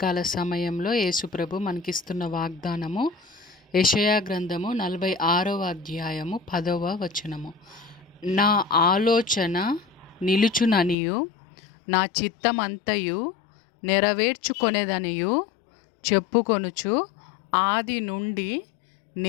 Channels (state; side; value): drops out; right; at 11.0 s